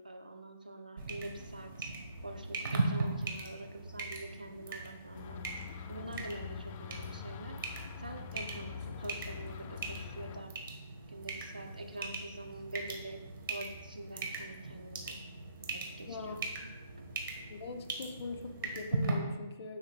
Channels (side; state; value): both; inverted; correlation -0.65